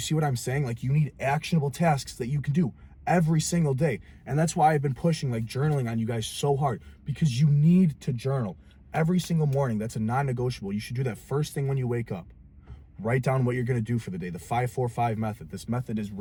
what I'm saying? Like, you need actionable tasks that you can do every single day. And that's why I've been pushing like journaling on you guys so hard, because you need to journal every single morning. That's a non-negotiable. You should do that first thing when you wake up. Write down what you're going to do for the day. The 5-4-5 method. This method is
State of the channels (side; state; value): both; identical; correlation 1.00